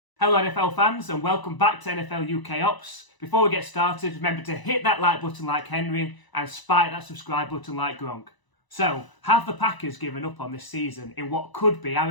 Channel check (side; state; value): right; late; 1.0 ms